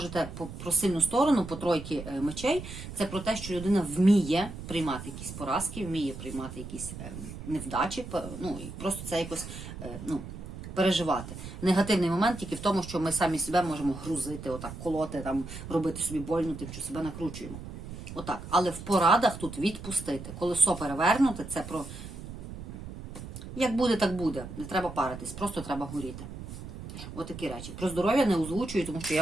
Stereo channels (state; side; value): noise; right; rumble, 11 dB below the sound